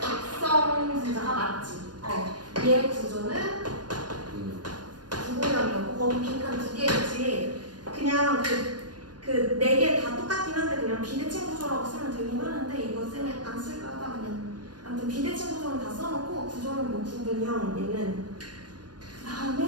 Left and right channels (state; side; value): late; left; 0.69 ms